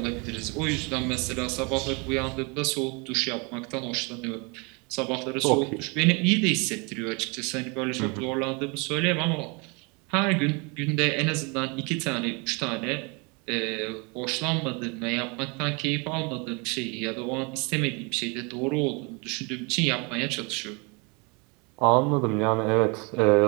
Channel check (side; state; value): left; quieter; 30.6 dB